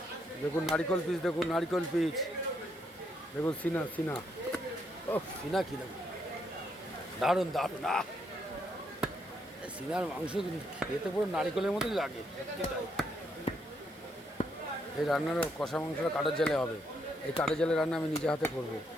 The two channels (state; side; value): normal; both; correlation 0.75